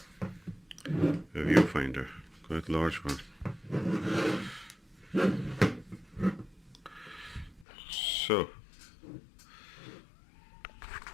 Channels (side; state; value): right; drops out; at 7.7 s